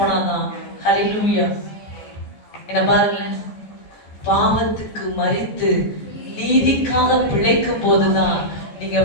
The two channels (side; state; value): right; late; 14 ms